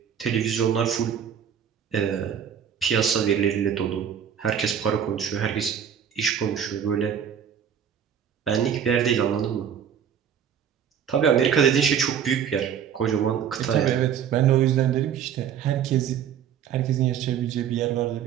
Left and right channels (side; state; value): left; quieter; 8.4 dB